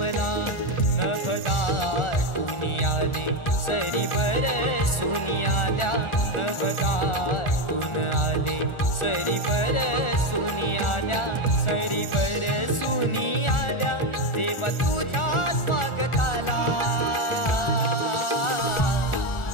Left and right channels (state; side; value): late; right; 1.4 ms